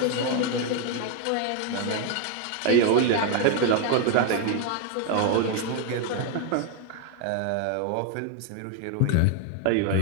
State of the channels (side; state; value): both; different; correlation 0.01